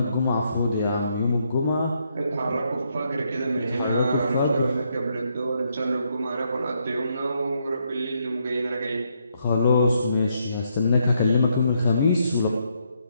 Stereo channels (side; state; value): both; inverted; correlation -0.76